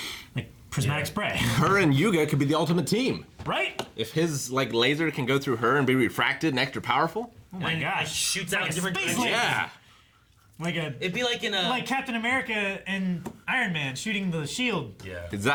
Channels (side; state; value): both; identical; correlation 1.00